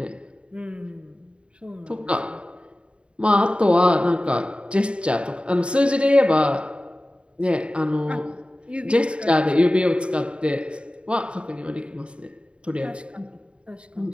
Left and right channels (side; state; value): left; late; 0.056 ms